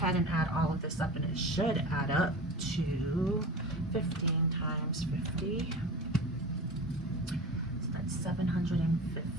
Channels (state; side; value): normal; both; correlation 0.33